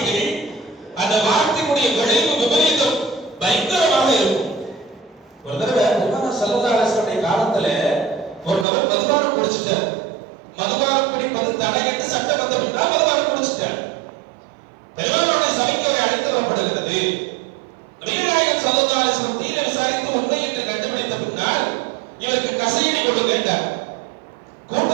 அந்த வார்த்தையுடைய விளைவு விபரீதம் பயங்கரமாக இருக்கும். ஒரு தடவை பெருமானார் ஸல்லல்லாஹு அலைஹி வஸல்லம் காலத்துல ஒரு நபர் மதுபானம் குடிச்சிட்டார். மதுபானம் குடிப்பது தடை என்று சட்டம் வந்த பின்னால் மதுபானம் குடிச்சிட்டார். பெருமானாருடைய சபைக்கு அவரை அழைத்து வரப்படுகிறது. நபிகள் நாயகம் ஸல்லல்லாஹு அலைஹி வஸல்லம் தீர விசாரித்து உண்மை என்று கண்டுபிடித்த பின்னால் இவருக்கு கசையடி கொடுங்க என்றார்.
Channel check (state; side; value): drops out; left; at 8.7 s